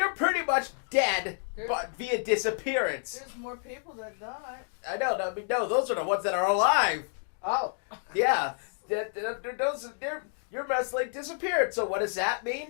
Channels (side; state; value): right; silent; 58 dB below the other